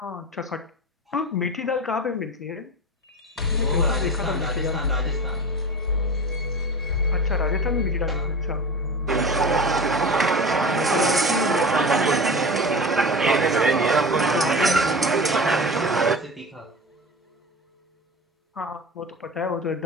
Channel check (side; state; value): both; normal; correlation 0.31